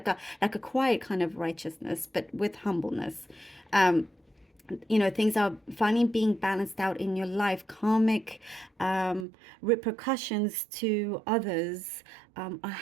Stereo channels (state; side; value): drops out; left; at 9.2 s